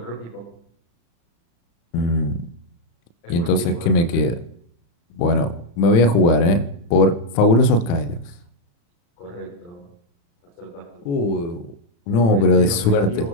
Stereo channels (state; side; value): late; right; 35 ms